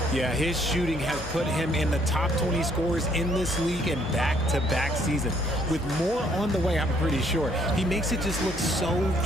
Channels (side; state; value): both; normal; correlation 0.66